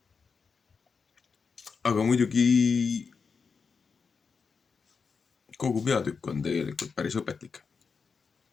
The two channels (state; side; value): quieter; right; 5.3 dB